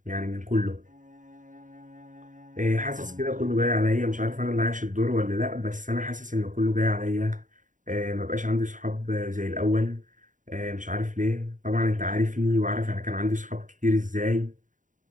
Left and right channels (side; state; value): left; late; 0.37 ms